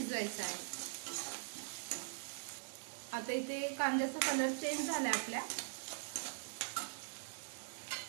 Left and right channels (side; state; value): left; silent; digital silence